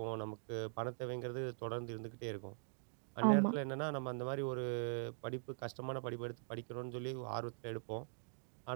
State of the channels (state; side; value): silent; left; digital silence